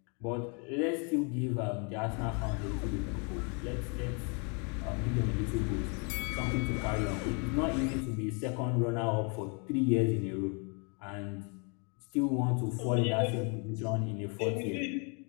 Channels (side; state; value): right; quieter; 35.9 dB